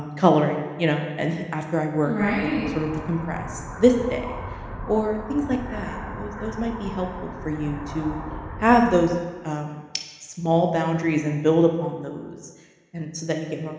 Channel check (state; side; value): identical; both; correlation 1.00